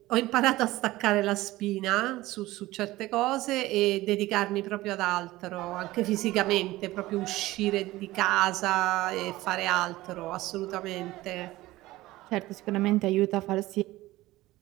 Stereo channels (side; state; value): left; quieter; 17.8 dB